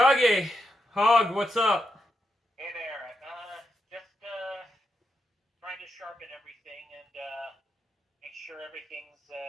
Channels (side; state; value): both; normal; correlation 0.84